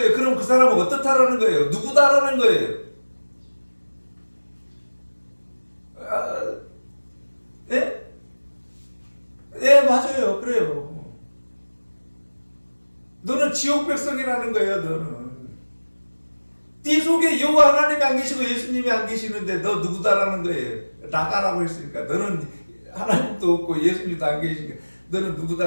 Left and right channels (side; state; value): both; inverted; correlation -1.00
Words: 그럼 그 사람은 어떻다라는 거예요? 누구다라는 거예요? 예? 예, 맞아요. 그래요. 너는 지옥 백성이라는 거예요, 너는. 네 속에 여호와 하나님이 안 계시고 예수님이 안 계시는데 너 누구다라는 거예요. 나가라고 했으니까. 너는 하나님도 없고 예수님도 안 계시니까 너는